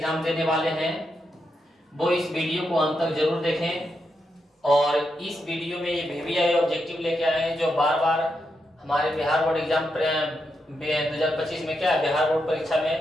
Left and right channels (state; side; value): normal; both; correlation 0.84